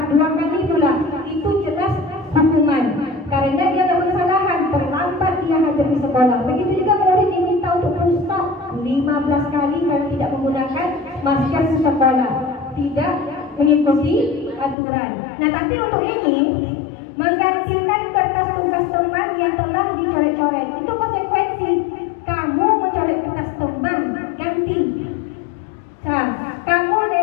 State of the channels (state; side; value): drops out; right; at 14.8 s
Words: 2 kali pula. Itu jelas hukuman. Karena dia ada kesalahan, terlambat dia hadir di sekolah. Begitu juga murid diminta untuk stop 15 kali kalau tidak menggunakan masker di sekolah, tidak mengikuti aturan. Nah, tapi untuk ini menggantikan kertas tugas teman yang telah dicoret-coret itu konsekuensi. Kamu mencoret kertas teman, ganti. Nah, kamu